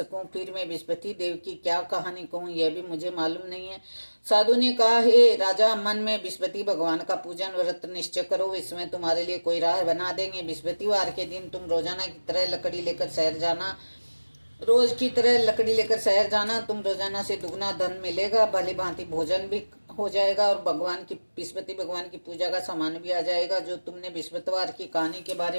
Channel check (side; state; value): both; inverted; correlation -1.00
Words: फिर मैं बृहस्पति देव की क्या कहानी कहूं, यह भी मुझे मालूम नहीं है। साधु ने कहा, हे राजा, मन में बृहस्पति भगवान का पूजन व्रत निश्चय करो, इसमें तुम्हारे लिए कोई राह बना देंगे। बृहस्पतिवार के दिन तुम रोजाना की तरह लकड़ी लेकर शहर जाना। रोज की तरह लकड़ी लेकर शहर जाना। तुम रोजाना से दुगना धन मिलेगा, भली भांति भोजन भी हो जाएगा और बृहस्पति भगवान की पूजा का सामान भी आ जाएगा। जो तुमने बृहस्पतिवार की कहानी के बारे